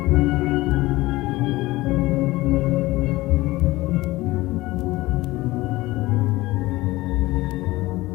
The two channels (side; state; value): right; quieter; 19.2 dB